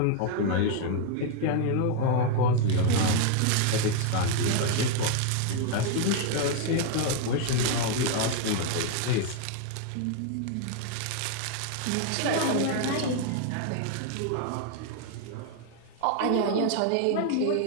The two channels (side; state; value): both; different; correlation 0.00